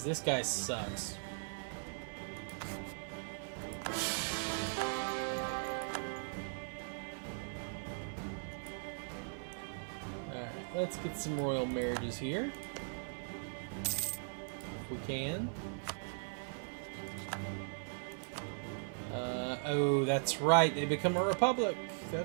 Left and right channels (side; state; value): left; silent; digital silence